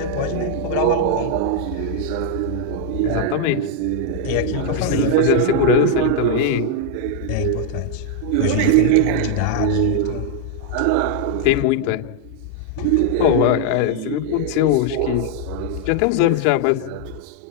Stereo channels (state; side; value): different; both; correlation 0.00